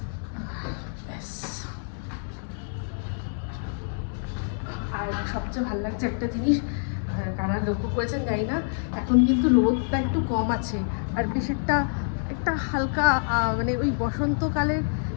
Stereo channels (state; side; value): silent; right; 60 dB below the other